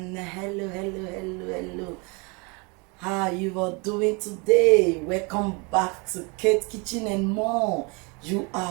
Hello. How you are doing today? Welcome back to Kitchen and More. You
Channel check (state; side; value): quieter; left; 30.3 dB